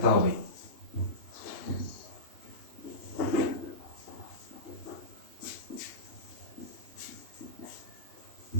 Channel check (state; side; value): late; right; 2.8 ms